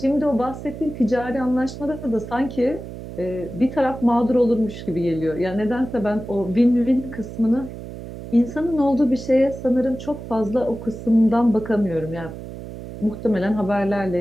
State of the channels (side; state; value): right; noise; hum, 11 dB below the sound